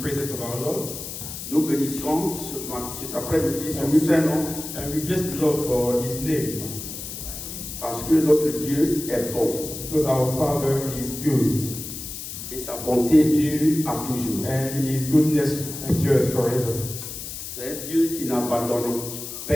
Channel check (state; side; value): noise; left; hiss, 9 dB below the sound